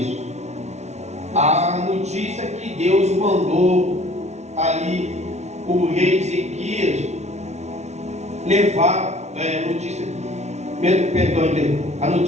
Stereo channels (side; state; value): left; late; 0.32 ms